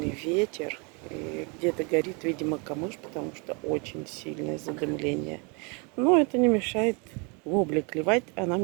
ветер. И где-то горит, видимо, камыш, потому что очень сильное задымление. Но это не мешает вобле клевать, а нам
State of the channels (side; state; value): left; quieter; 32.8 dB